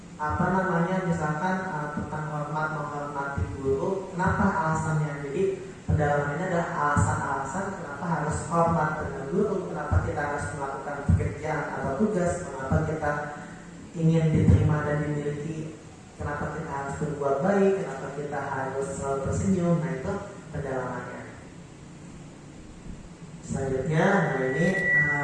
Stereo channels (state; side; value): identical; both; correlation 1.00